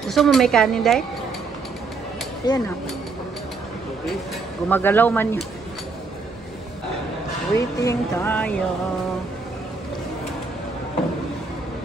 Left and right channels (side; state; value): left; quieter; 4.1 dB